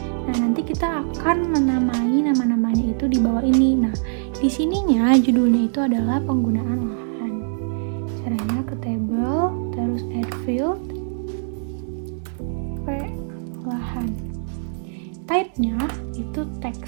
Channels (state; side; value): silent; left; digital silence